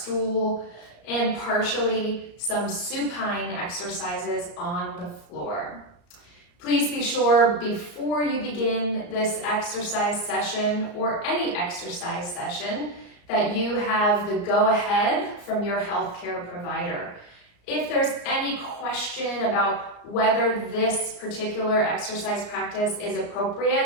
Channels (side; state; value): right; late; 34 ms